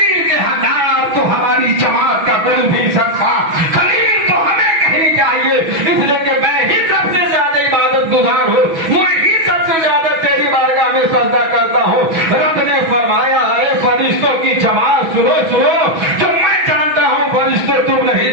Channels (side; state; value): left; late; 6.2 ms